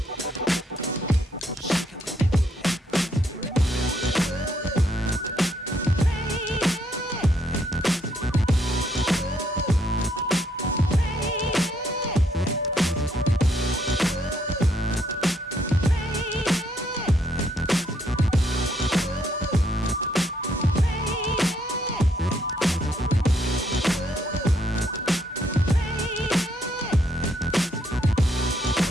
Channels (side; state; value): both; normal; correlation 0.71